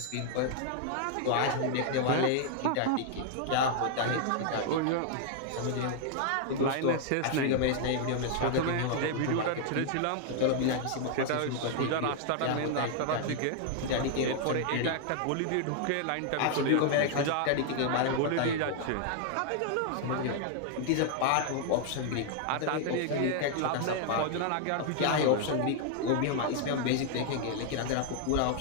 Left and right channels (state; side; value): different; both; correlation 0.00